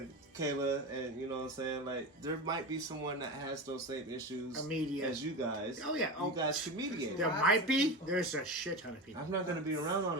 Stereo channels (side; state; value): both; normal; correlation 0.24